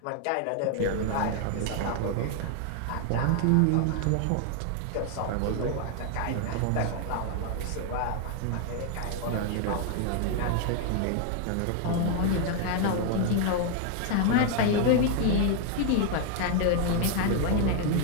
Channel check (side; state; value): both; different; correlation 0.00